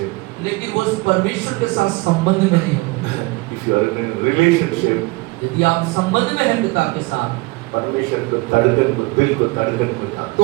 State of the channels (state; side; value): quieter; left; 23.8 dB